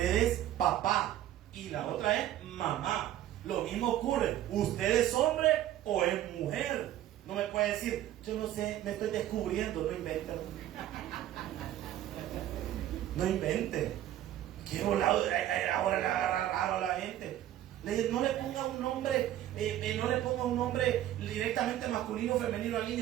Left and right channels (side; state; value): left; quieter; 12.7 dB